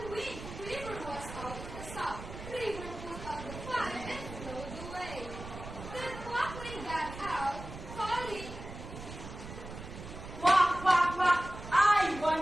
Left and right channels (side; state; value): right; noise; rumble, 11 dB below the sound